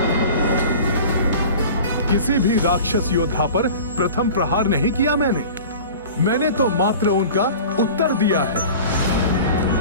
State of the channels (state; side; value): inverted; both; correlation -0.39